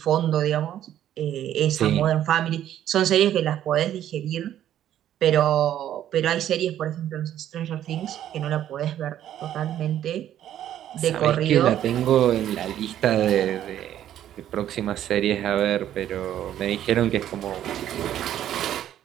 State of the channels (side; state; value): left; quieter; 11.3 dB